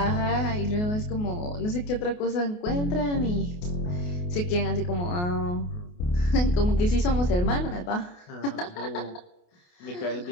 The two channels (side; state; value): right; late; 28 ms